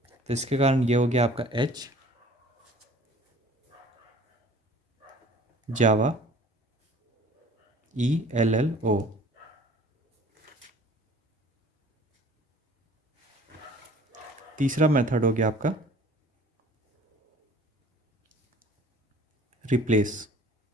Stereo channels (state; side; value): normal; both; correlation 0.49